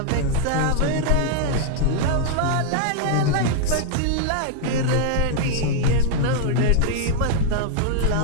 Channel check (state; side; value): different; both; correlation 0.00